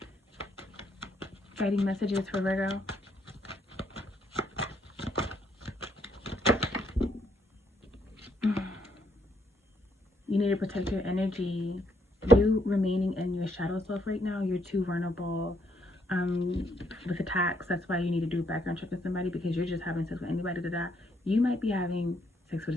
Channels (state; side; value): normal; both; correlation 0.73